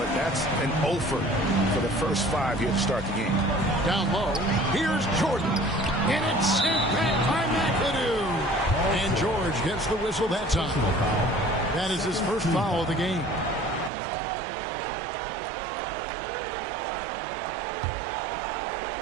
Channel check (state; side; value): drops out; left; at 13.9 s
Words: that's an offer for the first 5 here to start the game. Down low. Here's Jordan. And it's sent back by McAdoo. And George gets the whistle that time. That is his first foul of the game.